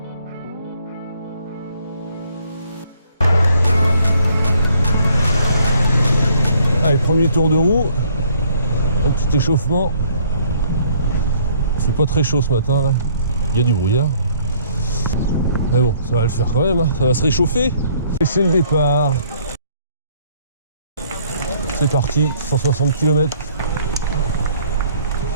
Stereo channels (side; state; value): both; inverted; correlation -0.62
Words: Allez, premier tour de roue, un petit échauffement. C'est pas très chaud ce matin là, il y a du brouillard. Mais bon, ça va le faire quand même, hein. Ça va se réchauffer. Et c'est le départ. C'est parti, 160 km.